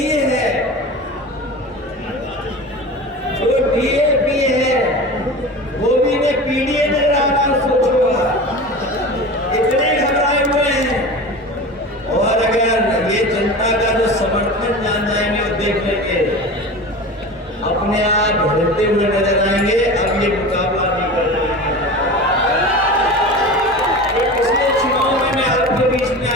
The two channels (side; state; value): both; normal; correlation 0.32